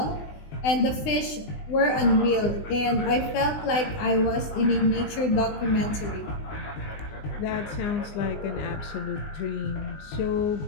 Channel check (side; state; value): right; late; 20 ms